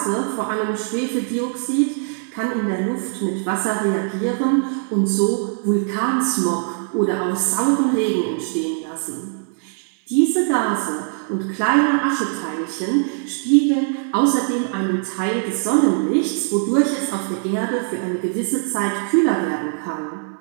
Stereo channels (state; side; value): silent; left; 60 dB below the other